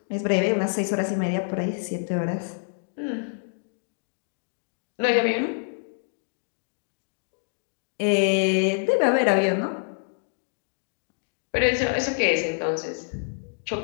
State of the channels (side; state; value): right; silent; digital silence